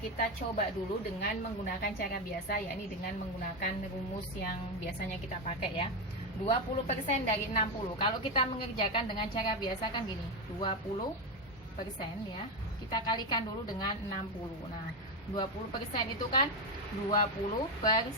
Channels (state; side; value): normal; both; correlation 0.10